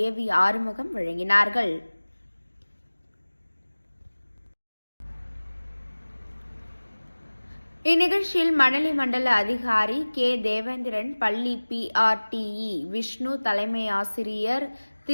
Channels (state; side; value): inverted; both; correlation -1.00